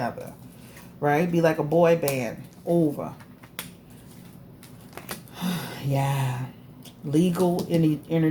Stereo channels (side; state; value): both; identical; correlation 1.00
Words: right? Be like a boy band over. Yeah, legal